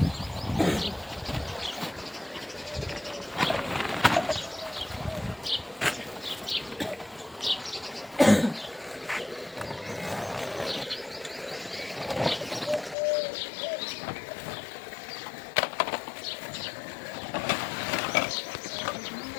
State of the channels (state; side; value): drops out; right; at 13.0 s